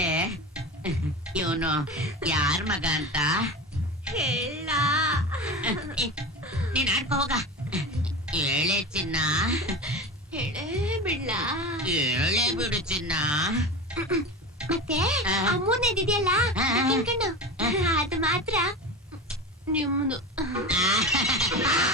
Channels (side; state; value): both; normal; correlation 0.27